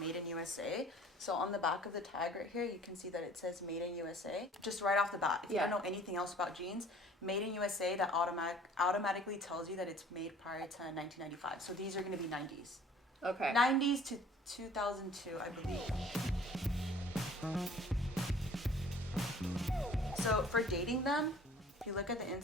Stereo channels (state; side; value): normal; both; correlation 0.51